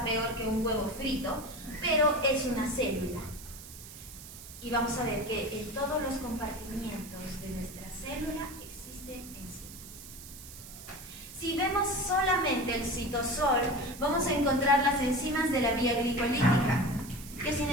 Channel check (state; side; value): noise; right; hiss, 15 dB below the sound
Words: peor que un huevo frito, pero es una célula. Y vamos a ver que en todos los compartimientos de nuestra célula existen enzimas. Si vemos solamente el citosol, vamos a encontrar las enzimas de la vía glicolítica, que sin